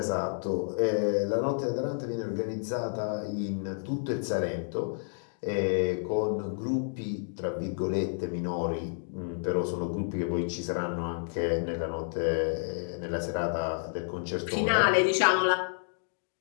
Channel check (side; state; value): right; silent; digital silence